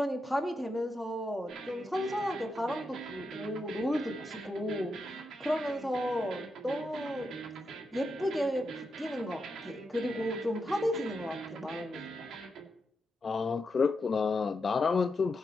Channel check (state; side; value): normal; both; correlation 0.86